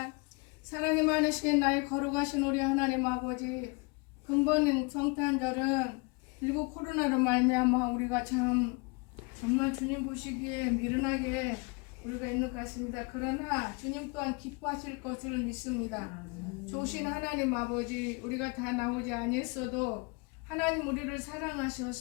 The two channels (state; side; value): quieter; right; 29.9 dB